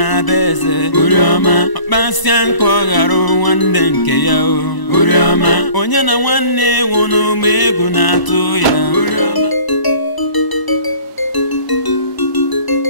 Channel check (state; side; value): late; right; 1.0 ms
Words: beze Urioma akpasianko garo nwanne nke ya o Urioma onye na nwanne wunu megwu na atụ ya Urioma